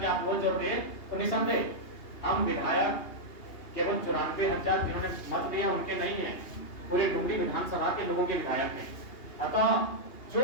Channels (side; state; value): right; late; 2.8 ms